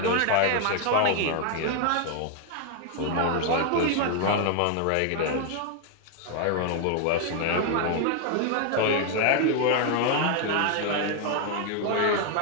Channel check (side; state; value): both; different; correlation 0.00